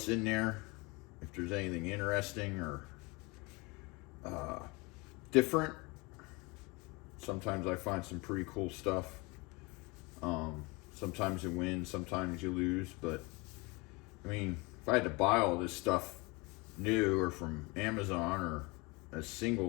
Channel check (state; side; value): quieter; right; 26.5 dB